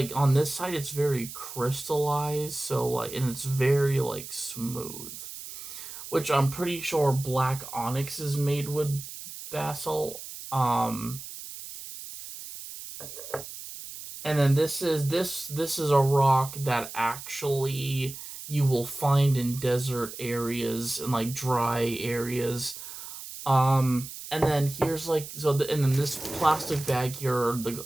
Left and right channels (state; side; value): noise; right; hiss, 11 dB below the sound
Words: on this side it's very crystallized, so like, and it's very like smooth, which I'm pretty sure black onyx is made with basalt. And then this is a rock that actually you will find in desert areas and like dry areas. And then here's like and then this plastic bag here are the